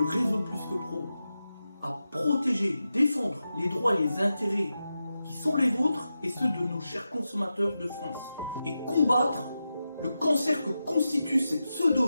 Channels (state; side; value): inverted; both; correlation -0.91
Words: réseau Plus que Pro à protéger, défendre les droits et les intérêts qui sont les vôtres et ceux de nos chers consommateurs de France et combattre le cancer que constituent ces